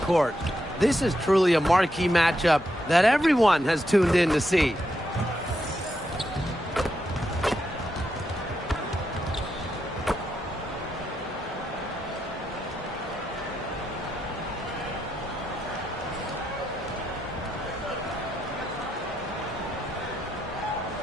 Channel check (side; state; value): both; normal; correlation 0.82